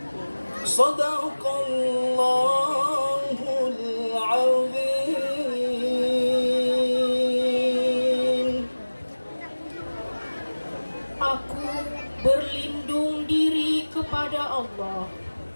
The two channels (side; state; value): both; inverted; correlation -1.00